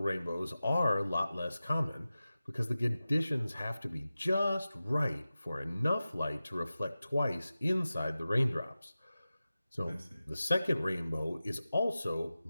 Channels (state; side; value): inverted; both; correlation -0.95